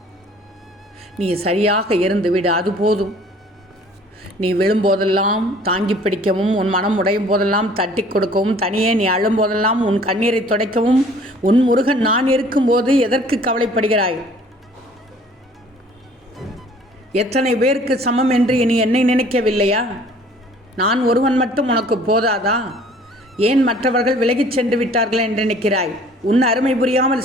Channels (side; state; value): both; normal; correlation 0.53